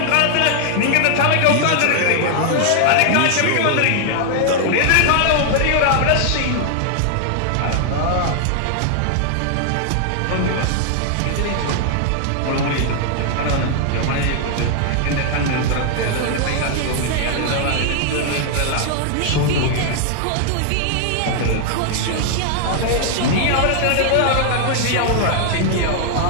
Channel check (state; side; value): different; both; correlation 0.00